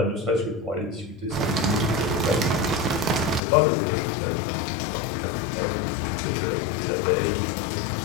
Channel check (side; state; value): right; drops out; at 3.4 s